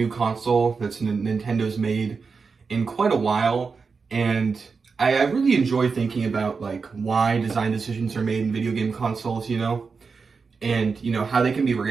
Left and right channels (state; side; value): quieter; left; 5.0 dB